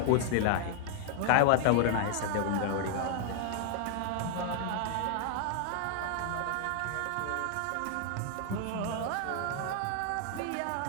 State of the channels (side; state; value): both; different; correlation -0.01